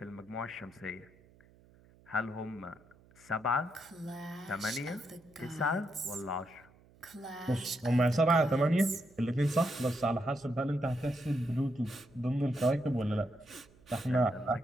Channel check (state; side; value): noise; right; hum, 28 dB below the sound